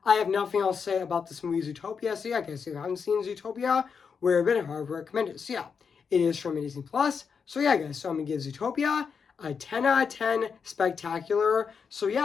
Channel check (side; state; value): right; quieter; 6.1 dB